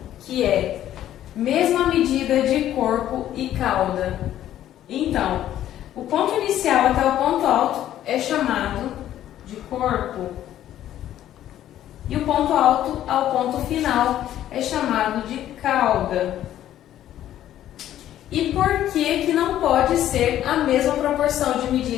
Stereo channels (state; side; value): quieter; right; 12.1 dB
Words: que é mesma medida de corpo e cauda. Então, o ponto inicial até o ponto alto é chamado de corpo e o ponto alto ao ponto final é chamado de cauda. E por que não pode ser a mesma proporção de